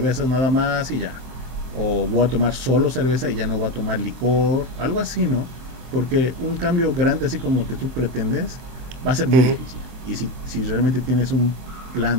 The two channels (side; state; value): left; late; 23 ms